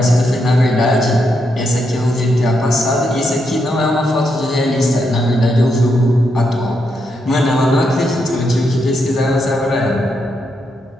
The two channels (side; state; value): both; normal; correlation 0.81